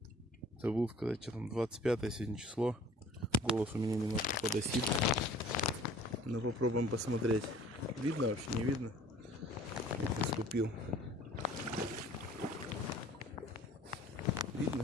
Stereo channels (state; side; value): normal; both; correlation 0.50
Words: Забыл сказать, что там 25 сегодня число. Голос у меня немножко подосит. Но попробуем посмотреть. Видно вообще, не видно? Наступил.